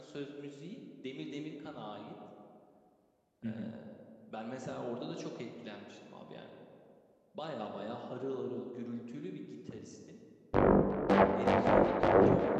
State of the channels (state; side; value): identical; both; correlation 1.00